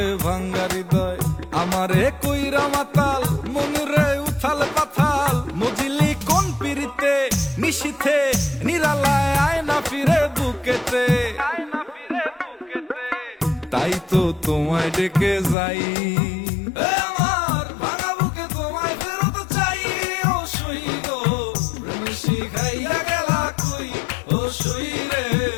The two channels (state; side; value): drops out; right; at 15.6 s